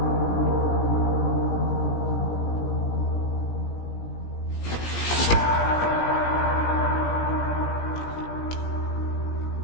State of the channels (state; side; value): late; right; 17 ms